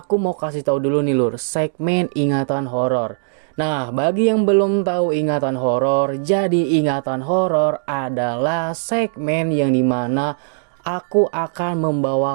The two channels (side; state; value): left; silent; digital silence